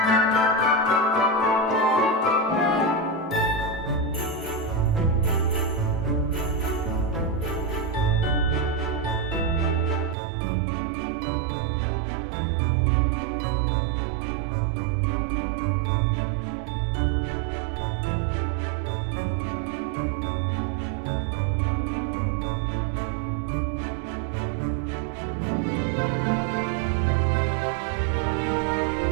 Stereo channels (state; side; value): drops out; left; at 10.2 s